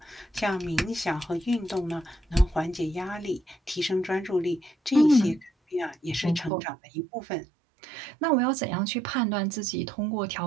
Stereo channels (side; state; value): left; drops out; at 6.5 s